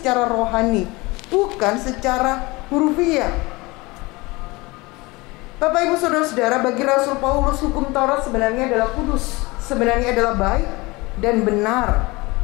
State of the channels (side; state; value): right; quieter; 23.4 dB